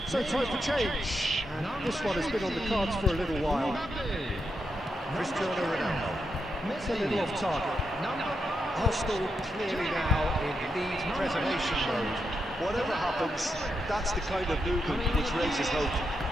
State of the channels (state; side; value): normal; both; correlation 0.84